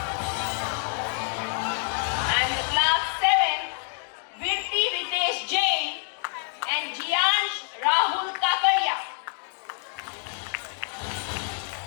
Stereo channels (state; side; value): silent; right; 56 dB below the other